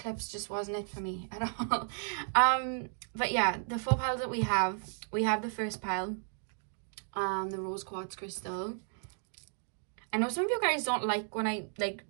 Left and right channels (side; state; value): left; silent; digital silence